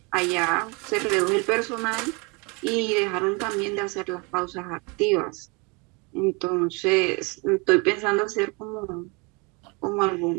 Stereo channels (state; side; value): quieter; left; 30.0 dB